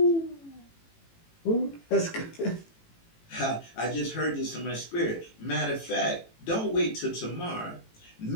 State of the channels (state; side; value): late; right; 18 ms